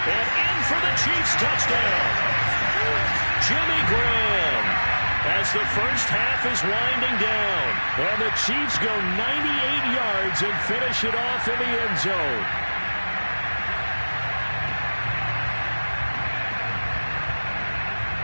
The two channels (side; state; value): both; inverted; correlation -1.00